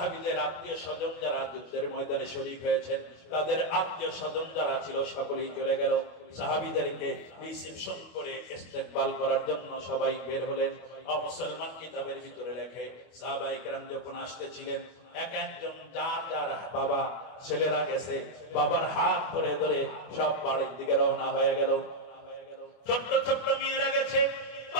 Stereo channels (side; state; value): right; late; 24 ms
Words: আত্মীয় স্বজন যারা যুদ্ধের ময়দানে শরীক হয়েছেন, তাদের আত্মীয় স্বজন যারা ছিল সকলেই চলে গেল। সাহাবীদেরকে রিসিপশন করে ইস্তেকবাল করার জন্য সবাই বের হলেন। মুসলমান কিতাবের ভিতরে লেখে সাহাবায়ে কেরাম যখন আসতেছিলেন, এক একজন যার যার বাবা ছেলেরা গেছে, বাবার হাত ধরে ধরে সব বাড়ির দিকে রওনা হয়ে গেল। ছোট্ট ছোট্ট মেয়েরা গেছে